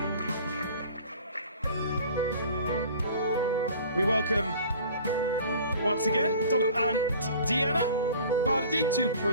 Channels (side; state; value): both; inverted; correlation -0.46